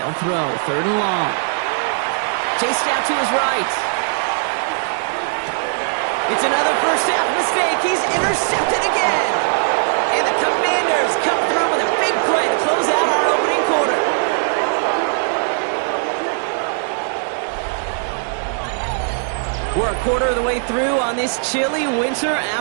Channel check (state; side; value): silent; left; digital silence